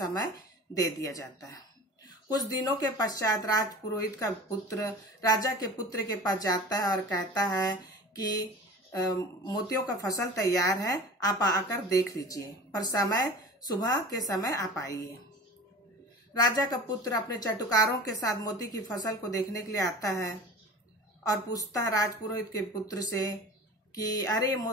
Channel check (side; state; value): both; normal; correlation 0.38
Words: दे दिया जाता है। कुछ दिनों के पश्चात राजपुरोहित का पुत्र राजा के पुत्र के पास जाता है और कहता है कि मोतियों का फसल तैयार है, आप आकर देख लीजिए, पर सुबह के समय आप आइए। राजा का पुत्र अपने चटुकारों के साथ मोती की फसल को देखने के लिए आता है और पूछता है राजपुरोहित के पुत्र से कि अरे